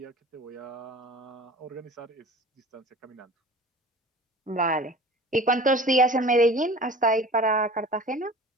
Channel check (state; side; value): normal; both; correlation 0.41